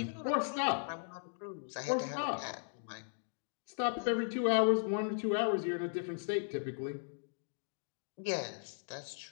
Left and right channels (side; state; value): right; silent; digital silence